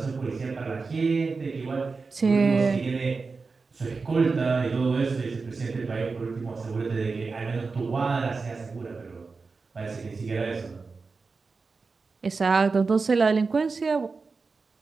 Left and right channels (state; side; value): quieter; left; 4.4 dB